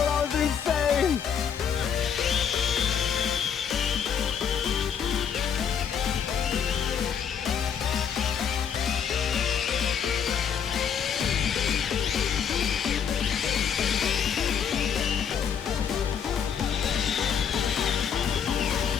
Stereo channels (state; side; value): quieter; right; 7.6 dB